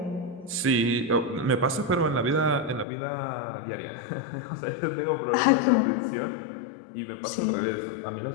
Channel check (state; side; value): drops out; right; at 2.9 s